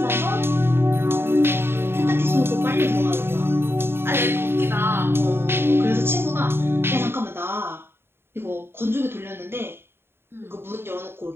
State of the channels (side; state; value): left; late; 0.11 ms